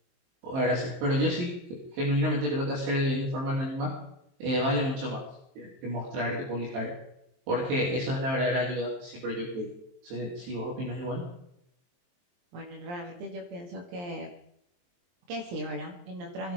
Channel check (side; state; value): left; late; 23 ms